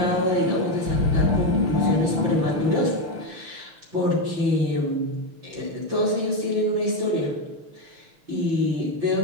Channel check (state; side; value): late; left; 6.4 ms